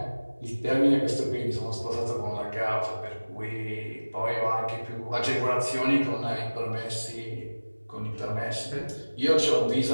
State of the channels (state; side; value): inverted; both; correlation -1.00